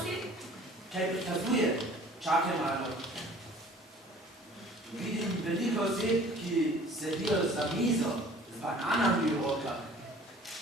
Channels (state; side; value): normal; both; correlation 0.50